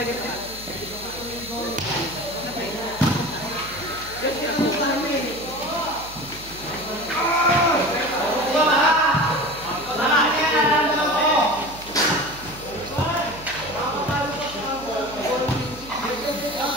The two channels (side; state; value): right; noise; hum, 17 dB below the sound